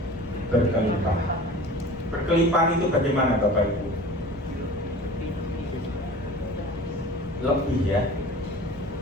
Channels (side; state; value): both; normal; correlation 0.40